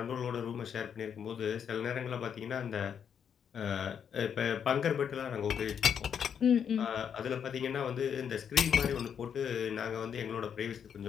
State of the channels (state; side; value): quieter; right; 7.8 dB